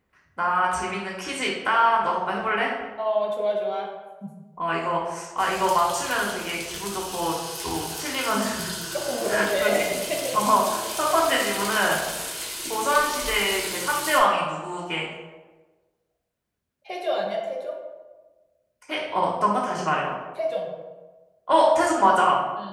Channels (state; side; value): identical; both; correlation 1.00